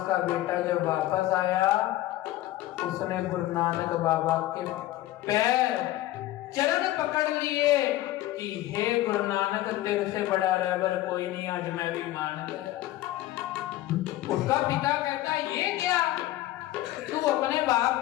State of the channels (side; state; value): right; quieter; 15.5 dB